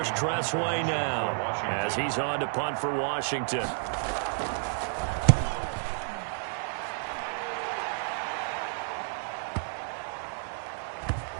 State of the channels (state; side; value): silent; left; 57 dB below the other